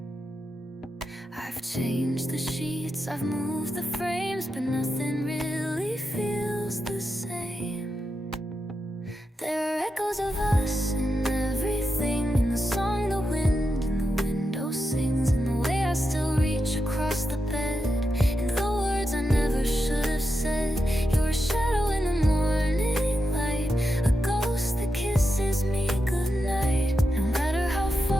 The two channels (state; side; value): normal; both; correlation 0.87